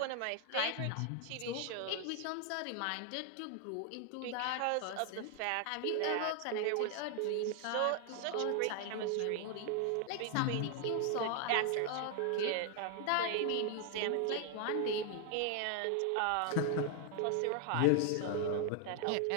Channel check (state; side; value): different; both; correlation 0.00